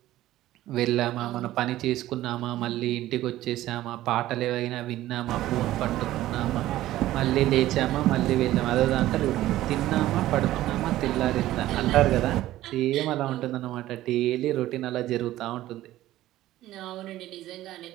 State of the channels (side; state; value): left; quieter; 14.9 dB